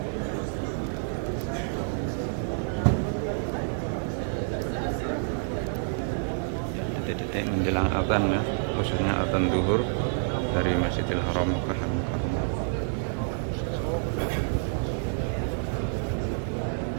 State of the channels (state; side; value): silent; left; digital silence